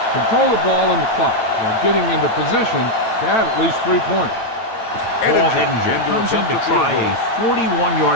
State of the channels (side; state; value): right; late; 9.0 ms